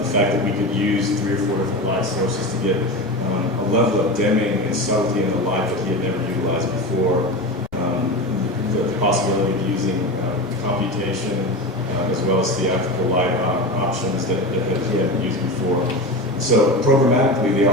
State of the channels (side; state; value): both; normal; correlation 0.24